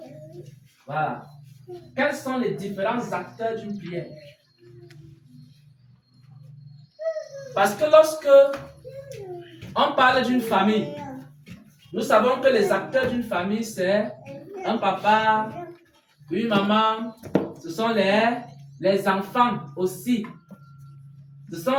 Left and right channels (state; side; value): identical; both; correlation 1.00